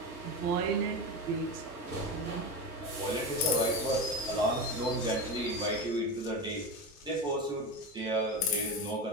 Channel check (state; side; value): normal; both; correlation 0.21